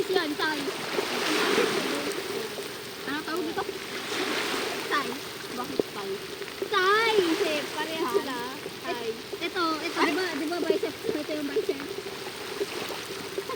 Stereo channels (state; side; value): identical; both; correlation 1.00